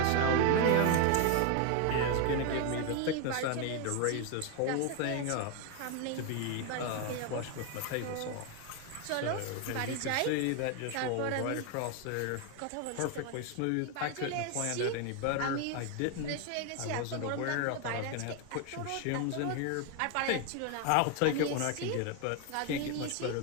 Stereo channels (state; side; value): different; both; correlation 0.01